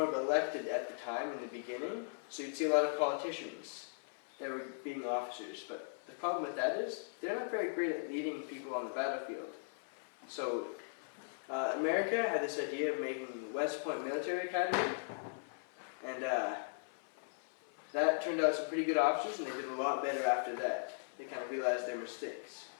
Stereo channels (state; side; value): silent; right; 52 dB below the other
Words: of elected at the time in the beginning, so you'd see a lot of politicians that were being officers. But the problem with that is, they're not very great at leading people on the battlefield. So America had this idea of making West Point Military Academy, and that turned out some pretty good officers, and they did a lot better after that. They kind of realized their mistakes.